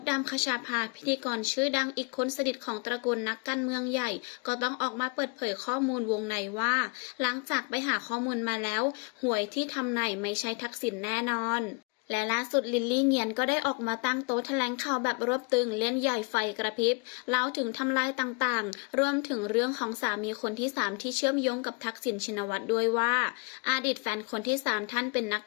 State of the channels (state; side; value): quieter; right; 31.6 dB